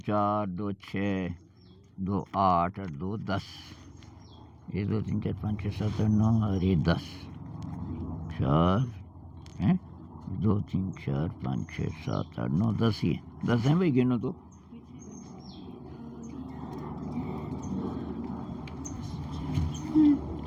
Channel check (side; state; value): both; identical; correlation 1.00